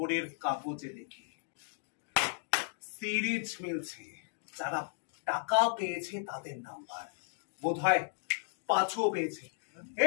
কাগজে দেখি সিরিজ মিলছে, যারা টাকা পেয়েছে তাদের নাম্বার, বোধহয় 5ও পেয়েছে।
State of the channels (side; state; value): right; silent; digital silence